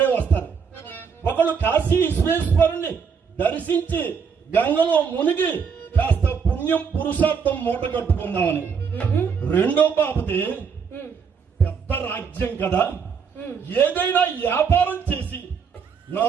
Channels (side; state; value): left; quieter; 6.2 dB